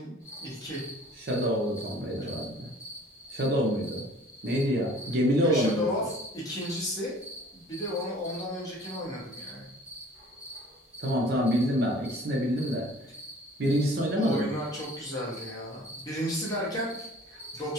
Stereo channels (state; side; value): normal; both; correlation 0.50